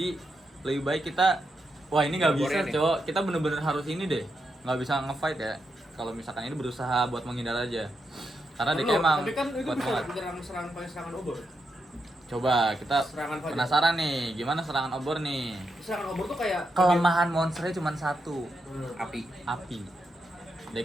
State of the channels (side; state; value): both; normal; correlation 0.84